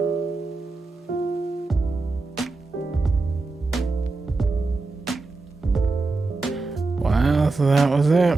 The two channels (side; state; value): left; quieter; 3.6 dB